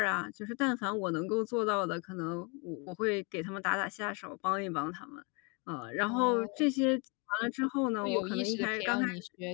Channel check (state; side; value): quieter; right; 31.9 dB